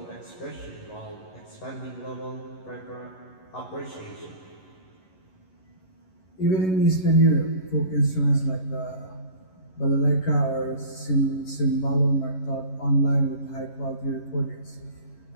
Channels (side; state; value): right; late; 11 ms